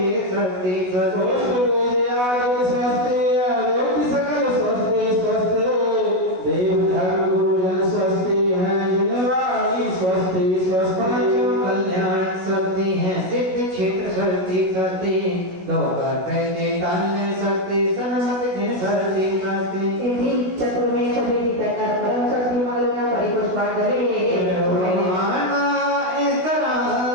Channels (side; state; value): left; late; 16 ms